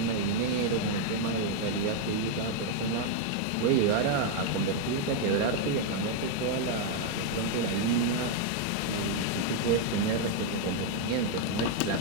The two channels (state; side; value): different; both; correlation 0.00